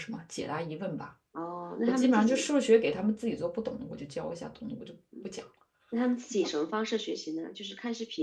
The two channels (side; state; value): both; identical; correlation 1.00